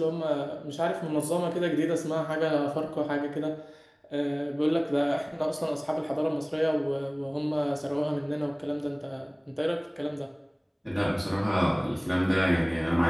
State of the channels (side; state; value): both; identical; correlation 1.00